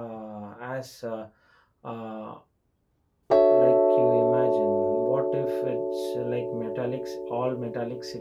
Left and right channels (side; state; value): both; identical; correlation 1.00